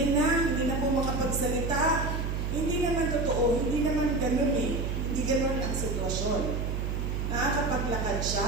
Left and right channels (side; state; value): right; noise; hum, 1 dB below the sound